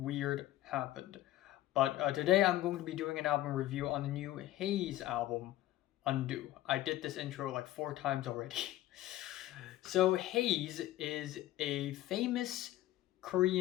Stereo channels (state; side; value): quieter; right; 14.9 dB